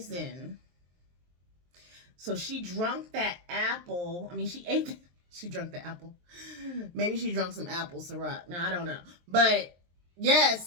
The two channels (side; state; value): left; late; 23 ms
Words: So she drank that apple. I mean, she ate it. She drank the apple. Maybe she drank some apple syrup. Now, I don't know. But, yeah,